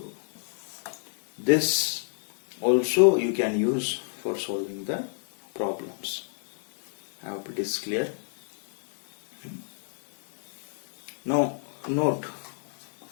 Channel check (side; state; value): right; silent; 59 dB below the other